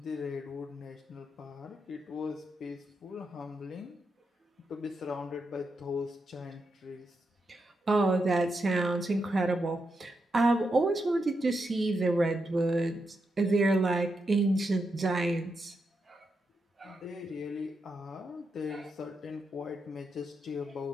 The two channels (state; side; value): normal; both; correlation 0.85